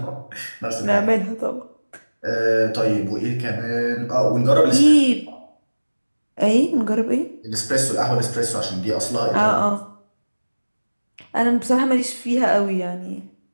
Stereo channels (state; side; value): inverted; both; correlation -1.00